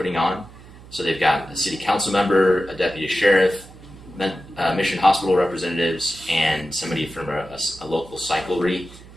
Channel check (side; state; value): right; noise; hum, 20 dB below the sound